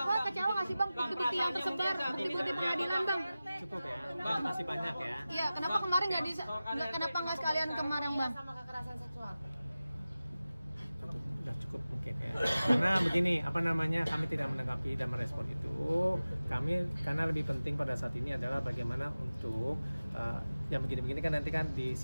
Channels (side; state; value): both; inverted; correlation -0.96